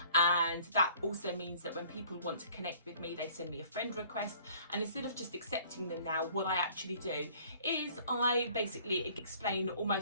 And that also means that when people want to connect with me, they send me a friend request. And instead of just accepting them now, what I actually do is I basically explain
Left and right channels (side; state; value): both; inverted; correlation -0.54